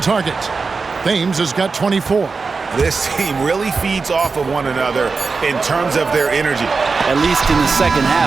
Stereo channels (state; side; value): quieter; left; 4.5 dB